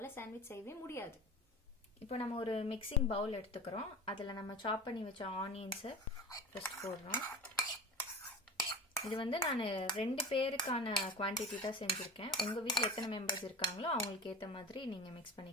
சாண்ட்விச் செய்யவே முடியாது. இப்போ நம்ம ஒரு மிக்சிங் பவுல் எடுத்துக்கிறோம். அதில் நம்ம சாப் பண்ணி வச்ச ஆனியன்ஸை ஃபர்ஸ்ட் போடுறோம். இது வந்து நான் 2 பேருக்கான குவான்டிட்டி தான் செஞ்சுருக்கேன். உங்கள் வீட்டில் எத்தனை மெம்பர்ஸ் இருக்காங்களோ அவங்களுக்கு ஏற்ற மாதிரி நீங்கள் மிக்ஸ்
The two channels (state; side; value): normal; both; correlation 0.34